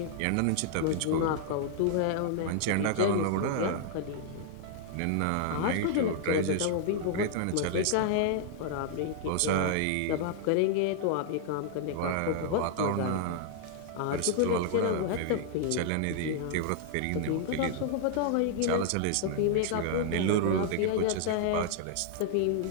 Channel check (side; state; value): both; different; correlation -0.01